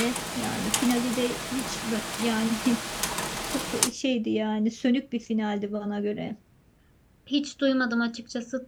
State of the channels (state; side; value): identical; both; correlation 1.00